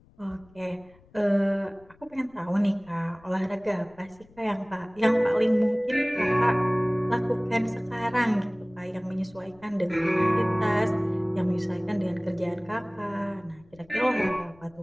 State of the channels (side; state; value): left; noise; rumble, 28 dB below the sound